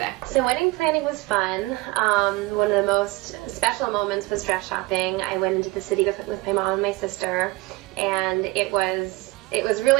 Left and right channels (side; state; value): left; quieter; 21.3 dB